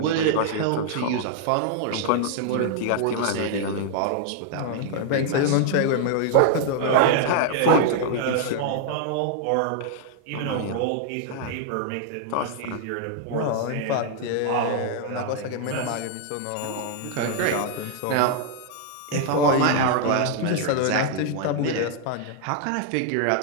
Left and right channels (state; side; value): different; both; correlation 0.00